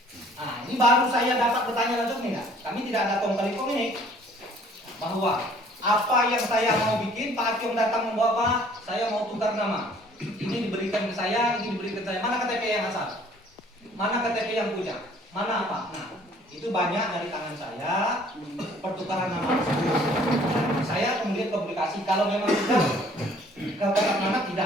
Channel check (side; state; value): both; normal; correlation 0.56